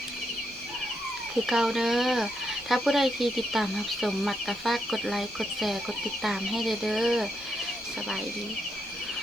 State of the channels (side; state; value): right; noise; hiss, 26 dB below the sound